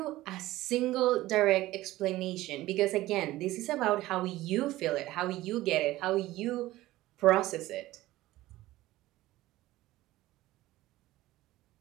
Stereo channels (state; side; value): quieter; left; 16.8 dB